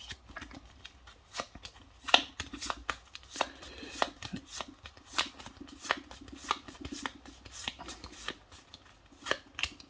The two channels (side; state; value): both; identical; correlation 1.00